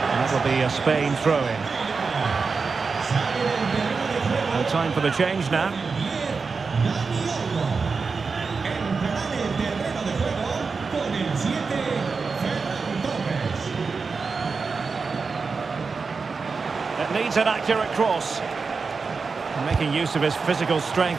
And that'll be a Spain throw-in. No time for the change now. It needs an accurate cross. Making use of his physical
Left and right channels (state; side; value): quieter; left; 4.8 dB